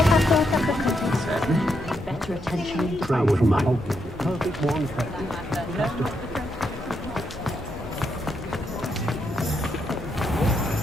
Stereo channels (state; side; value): normal; both; correlation 0.80